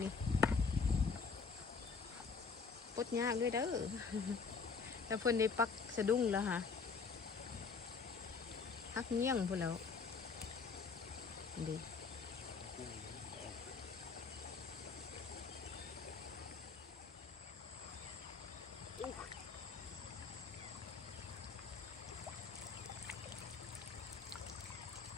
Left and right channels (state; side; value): quieter; right; 5.1 dB